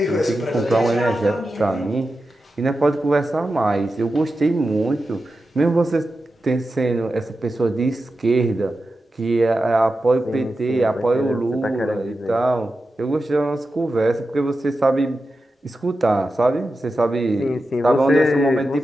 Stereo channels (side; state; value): both; normal; correlation 0.91